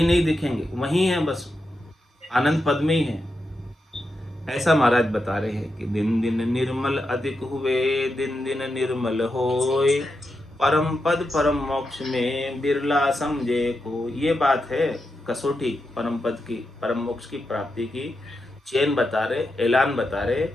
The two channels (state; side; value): normal; both; correlation 0.87